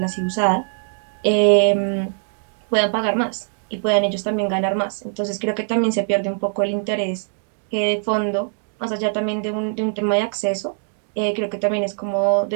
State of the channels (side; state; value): left; silent; digital silence